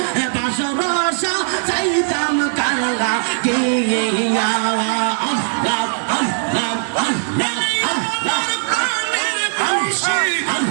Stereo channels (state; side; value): silent; left; 67 dB below the other